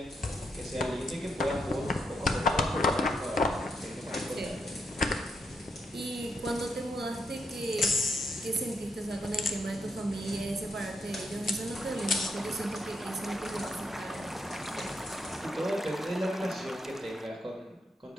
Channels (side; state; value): both; normal; correlation 0.79